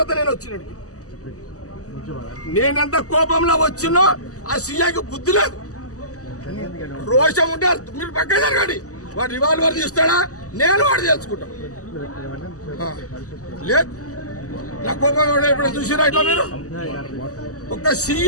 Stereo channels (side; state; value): right; late; 0.66 ms